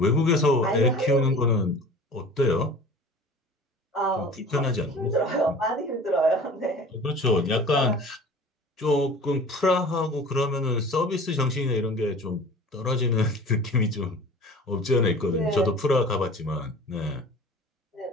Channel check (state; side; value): normal; both; correlation 0.42